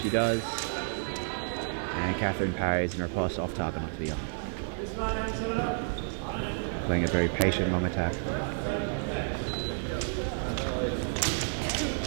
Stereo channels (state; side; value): silent; left; digital silence